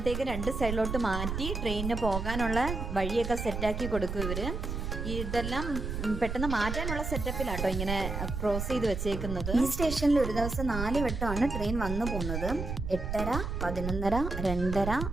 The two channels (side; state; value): right; noise; rumble, 4 dB below the sound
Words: രണ്ട് സൈഡിലോട്ട് മാറ്റി ട്രെയിനിന് പോകാനുള്ള വഴിയൊക്കെ സെറ്റാക്കി കൊടുക്കും ഇവർ. ഇതെല്ലാം പെട്ടെന്ന് മാറ്റാനുള്ള സെറ്റപ്പിലാട്ടോ ഇങ്ങനെ ക്രോസ് ചെയ്ത് വെച്ചേക്കുന്നത്. ഈ സ്റ്റേഷനിൽ ഒരു ദിവസം 4 വട്ടമാണ് ട്രെയിൻ വന്നു പോകുന്നത്. 8:30, 11:30, 2:30,